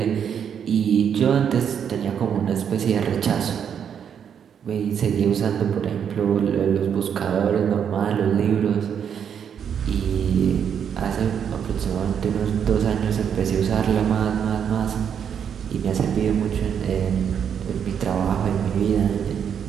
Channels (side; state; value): left; quieter; 8.0 dB